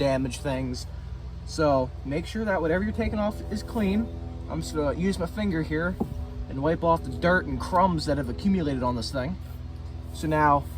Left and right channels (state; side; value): identical; both; correlation 1.00